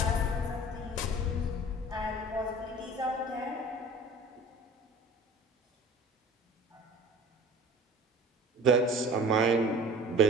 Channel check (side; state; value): both; normal; correlation 0.43